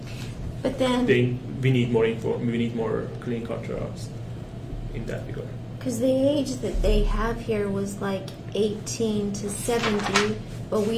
But then, we need more clinical trials in that regard. because the age that they have here was like 18 to 70, but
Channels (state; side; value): identical; both; correlation 1.00